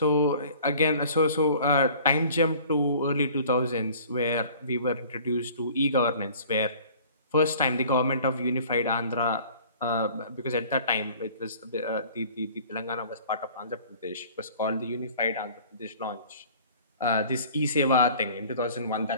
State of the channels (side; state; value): both; inverted; correlation -0.49